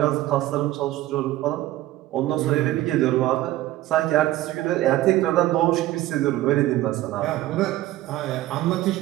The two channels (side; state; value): left; quieter; 15.5 dB